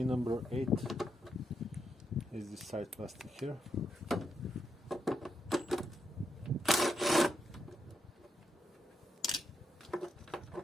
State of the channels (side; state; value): both; normal; correlation 0.81